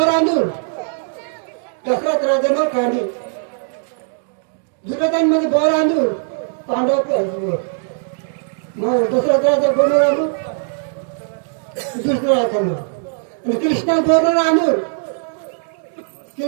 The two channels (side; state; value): left; silent; digital silence